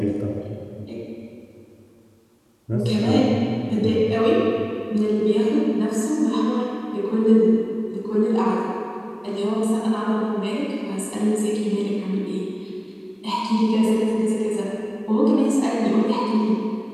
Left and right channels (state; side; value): identical; both; correlation 1.00